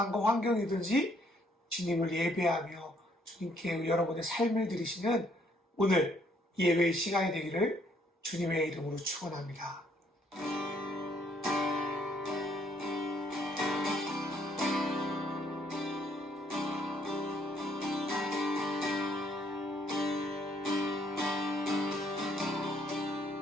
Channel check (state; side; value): normal; both; correlation 0.67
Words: 환경이든지 주님을 예배하며 주님께 여러분의 삶을 드리시는 오늘 예배의 시간이 되기를 주님의 이름으로 축원합니다.